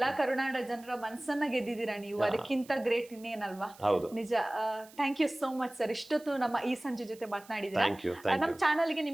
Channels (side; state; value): right; noise; hiss, 23 dB below the sound